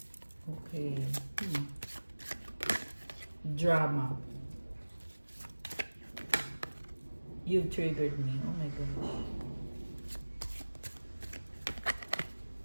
Okay. Drama. You've triggered me. Oh my gosh.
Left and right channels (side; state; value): both; inverted; correlation -1.00